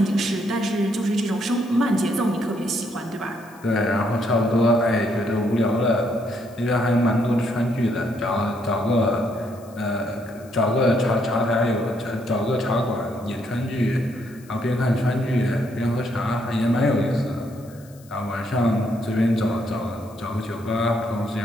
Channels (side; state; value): left; noise; hiss, 26 dB below the sound